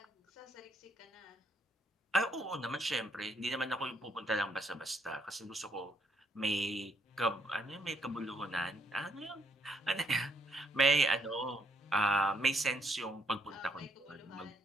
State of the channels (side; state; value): both; normal; correlation 0.71